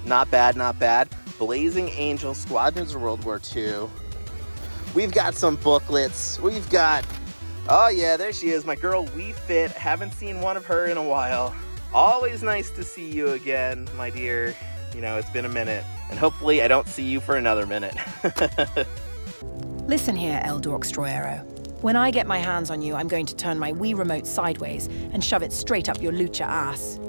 not bad, not bad. Blazing Angel, Squadrons of World War II. We've got some booklets. We've got, oh yeah, there she is, my girl Wii Fit. Haven't seen one of her in a while. Always nice to see you again, my dear. You know, it's been a minute. And hopefully I don't see you for another minute. Listen here, El Dorkstroyero. When I get my hands on you, I'm going to turn my Wii remote sideways and shove it straight up your lucha ass.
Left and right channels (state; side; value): inverted; both; correlation -1.00